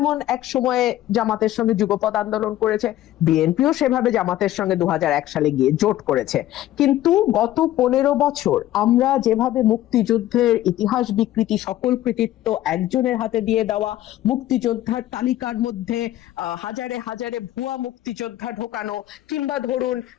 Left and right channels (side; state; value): right; quieter; 14.0 dB